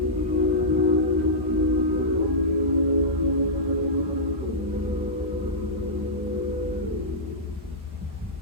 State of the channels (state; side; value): normal; both; correlation -0.14